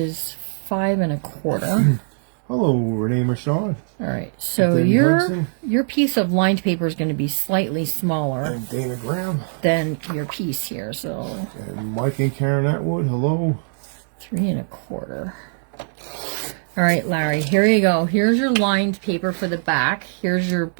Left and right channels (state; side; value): silent; left; digital silence